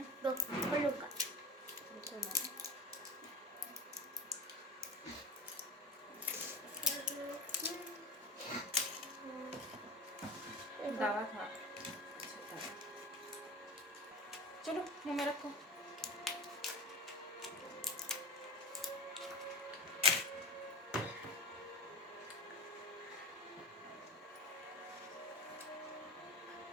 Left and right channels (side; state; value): both; normal; correlation 0.30